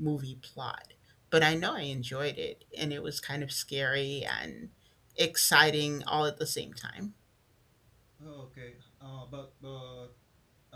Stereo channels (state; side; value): identical; both; correlation 1.00